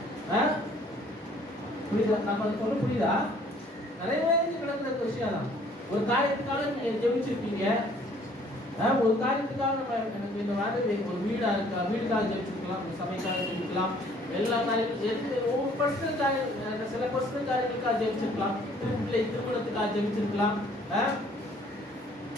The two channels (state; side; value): normal; both; correlation 0.58